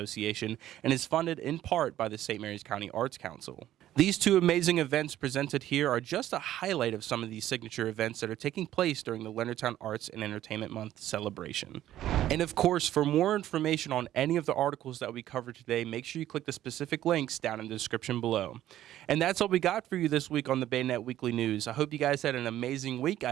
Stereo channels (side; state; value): left; quieter; 12.9 dB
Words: and is funded in part by the St. Mary's County Arts Council. These two amazing events presented here are just a highlight of some of these signature events that are taking place during the Leonardtown Arts and Entertainment Month celebration. And of course, for more information on any of the articles that we covered today, make sure you click the specific links down in the description below. And that's all we got for you this week on the BayNet Weekly News. I hope you guys had an amazing week.